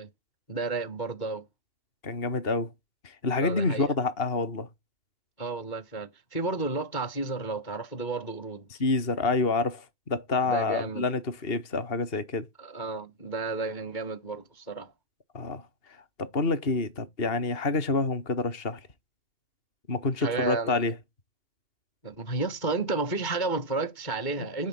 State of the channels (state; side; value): late; right; 2.8 ms